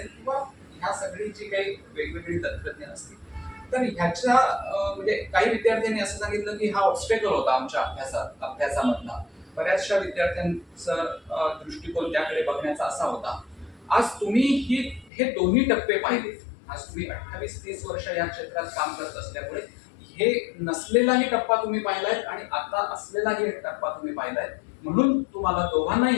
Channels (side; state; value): right; drops out; at 15.1 s